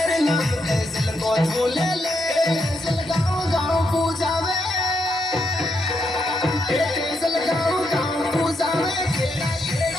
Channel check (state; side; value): normal; both; correlation 0.80